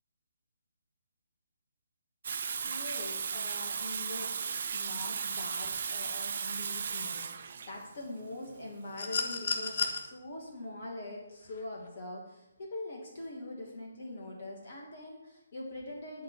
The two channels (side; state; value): both; inverted; correlation -0.77